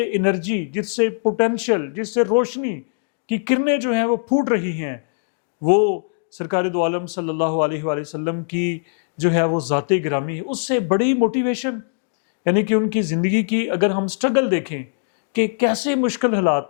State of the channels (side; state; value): right; silent; digital silence